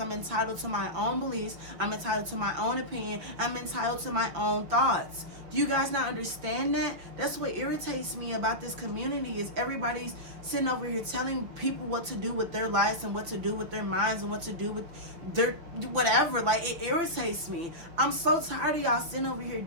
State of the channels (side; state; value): left; late; 6.1 ms